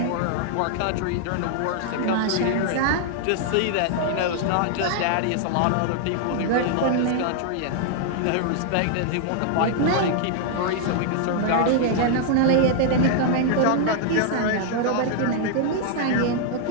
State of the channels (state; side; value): different; both; correlation 0.00